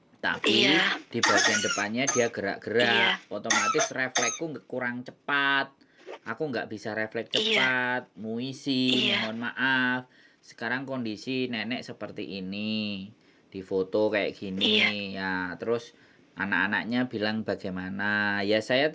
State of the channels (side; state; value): both; identical; correlation 1.00